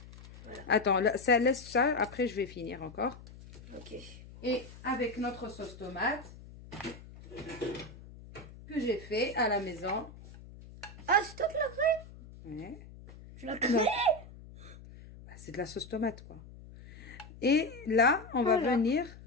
Attends, là, ça laisse ça. Après, je vais finir encore. Ok. Et avec notre sauce tomate que j'ai fait à la maison. Ah, c'est toi qui l'as fait? Ouais. Tu l'as fait? Bah, c'est de la sauce tomate, quoi. Et là, on va Voilà. venir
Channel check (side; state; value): left; noise; hum, 18 dB below the sound